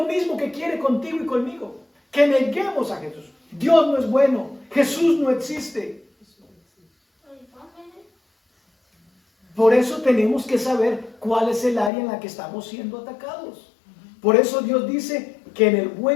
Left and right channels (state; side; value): drops out; right; at 11.9 s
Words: mismo que quiere contigo y conmigo. Que neguemos a Jesús. Dios no es bueno. Jesús no existe. Por eso tenemos que saber cuál es el área en la que estamos siendo atacados. Por eso Dios dice que en el